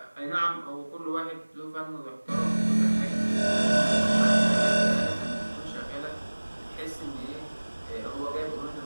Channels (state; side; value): inverted; both; correlation -1.00